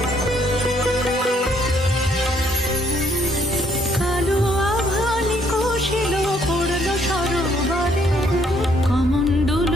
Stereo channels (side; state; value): both; normal; correlation 0.67